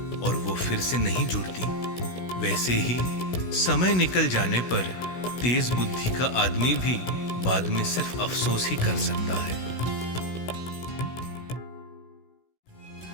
और वो फिर से नहीं जुड़ती, वैसे ही समय निकल जाने पर तेज बुद्धि का आदमी भी बाद में सिर्फ अफसोस ही कर सकता है।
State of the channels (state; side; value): late; right; 16 ms